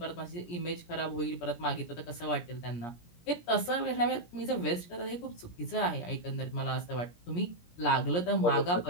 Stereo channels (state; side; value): late; right; 17 ms